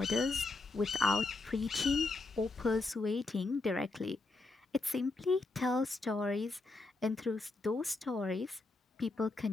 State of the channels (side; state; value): right; quieter; 3.3 dB